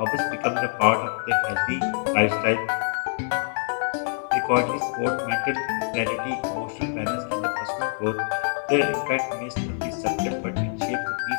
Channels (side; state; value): right; silent; 62 dB below the other